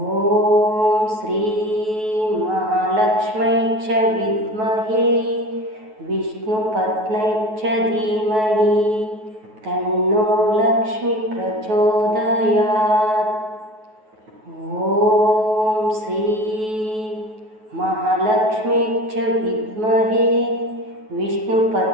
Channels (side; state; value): left; late; 9.3 ms